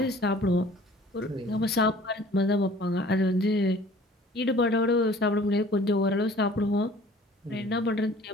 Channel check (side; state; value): both; normal; correlation 0.50